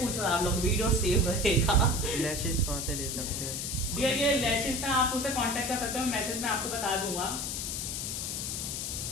आप लोग, वीडियो सेव रहेगा। लैशेस कहाँ से ले सकते हैं? डियर ये लैशेस ना आप उसे कांटेक्ट कर सकते हो, मैसेज में आपको बता दूंगा।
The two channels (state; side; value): noise; left; hiss, 3 dB below the sound